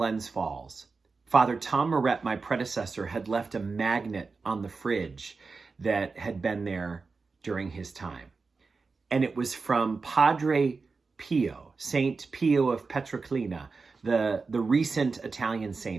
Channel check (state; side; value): quieter; left; 4.4 dB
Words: Falls, Father Tom Moret, my predecessor, had left a magnet on the fridge that had been there during his time. And it was from Padre Pio, Saint Pio of Pietrelcina, the recent Italian